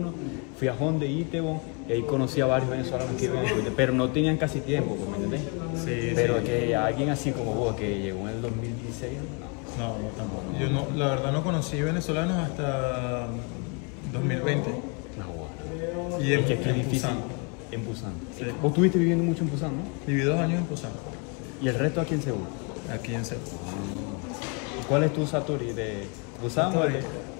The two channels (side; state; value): right; quieter; 32.8 dB